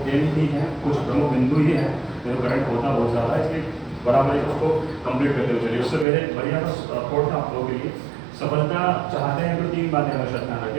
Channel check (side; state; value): left; drops out; at 6.1 s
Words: 10 ही हैं, कुछ प्रमुख बिंदु ही हैं जो करंट होता बहुत ज़्यादा है, इसलिए बराबर उसको कंप्लीट करते हुए चलिए। उससे पहले बढ़िया थॉट था आप लोगों के लिए। सफलता चाहते हैं तो 3 बातें हमेशा ध्यान